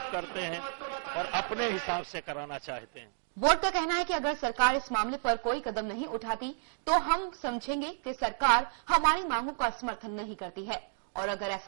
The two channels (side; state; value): left; silent; digital silence